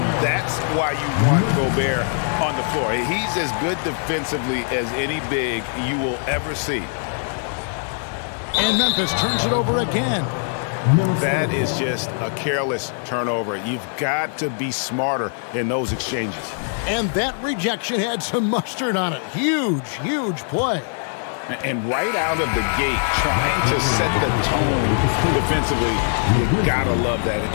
that's why you want Gobert on the floor. He's as good defensively as any big you will ever see. And Memphis turns it over again. That is just a careless turnover. You've got to be smarter in those exchanges. And that rejection had some mustard on it. Huge, huge play. And right out of the gate, trying to set the tone defensively, you gotta love that.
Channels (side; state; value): right; silent; 56 dB below the other